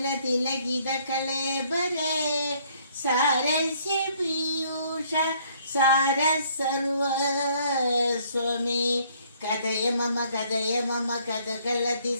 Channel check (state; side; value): inverted; both; correlation -0.63